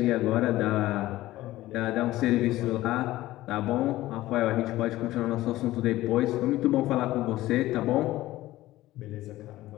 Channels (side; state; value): right; quieter; 16.3 dB